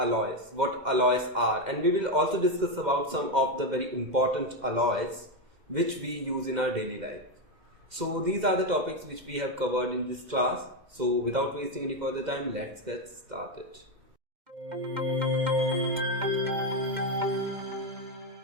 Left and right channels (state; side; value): late; left; 2.1 ms